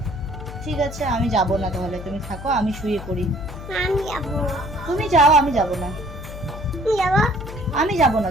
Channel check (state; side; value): noise; left; hum, 11 dB below the sound